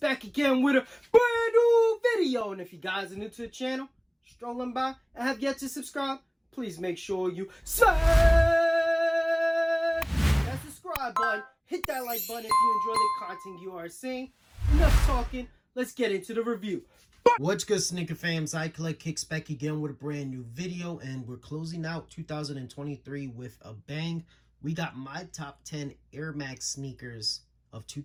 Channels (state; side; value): identical; both; correlation 1.00